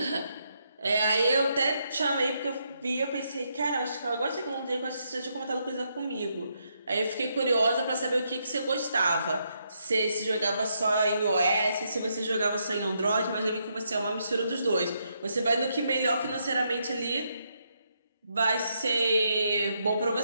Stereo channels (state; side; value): inverted; both; correlation -0.78